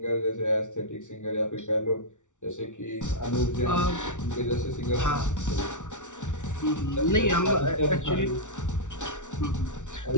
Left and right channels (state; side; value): late; right; 0.86 ms